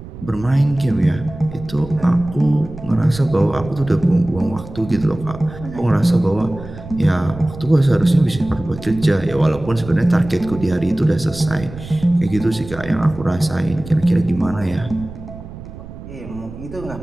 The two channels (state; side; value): noise; right; rumble, 14 dB below the sound